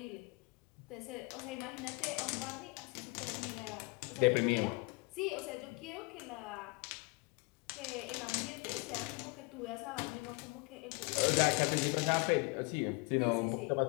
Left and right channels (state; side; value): quieter; right; 29.3 dB